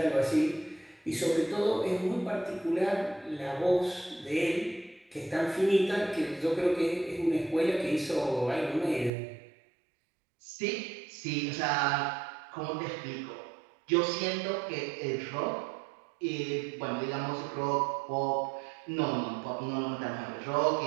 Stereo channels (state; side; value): drops out; left; at 9.1 s